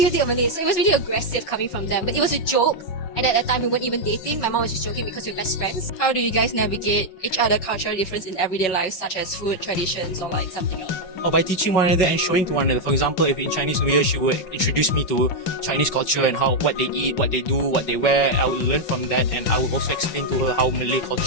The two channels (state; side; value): late; right; 5.4 ms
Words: you date a Malay? So it was really aggressive coming from them. But it was a joke. And at that time we weren't even dating. My mom was just joking because we were best friends. How do you guys navigate each other cultural difference in everyday life, such as food, traditions, or like something else? Or by teaching one another and showing to one another. For example, if in Chinese New Year she would introduce me to Chinese culture and what they eat, what they do, what they wear, I would learn from that, and I would also explain to her how Malay